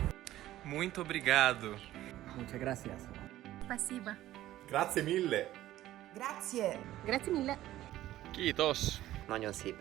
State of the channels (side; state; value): left; quieter; 14.4 dB